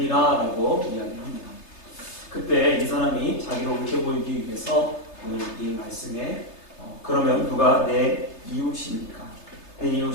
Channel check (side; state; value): right; late; 3.3 ms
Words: 라고 이야기합니다. 그때 이 사람이 자기를 옳게 보이기 위해서 오늘 이 말씀에 그러면 누가 내 이웃입니까? 내